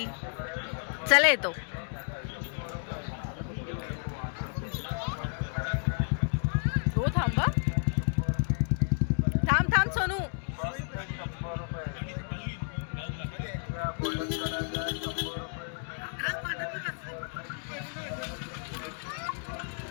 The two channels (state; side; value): silent; right; 57 dB below the other